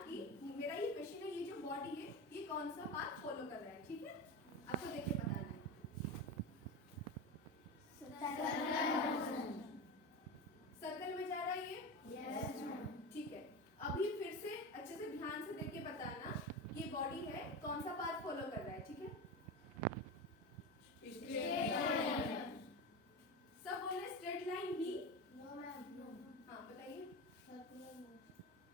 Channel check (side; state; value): both; normal; correlation 0.23